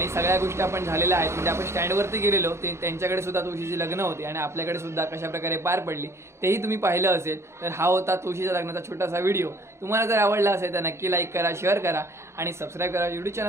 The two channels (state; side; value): late; left; 0.13 ms